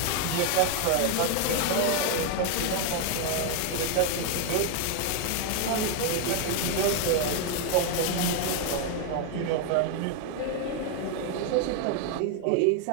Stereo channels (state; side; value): different; both; correlation 0.01